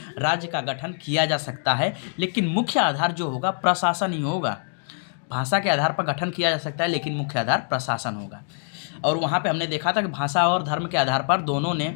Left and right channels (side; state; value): right; silent; digital silence